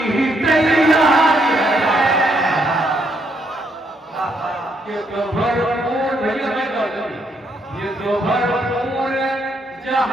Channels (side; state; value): both; normal; correlation 0.74